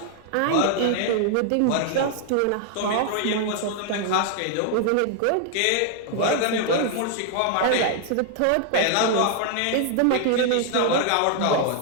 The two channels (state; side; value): different; both; correlation 0.00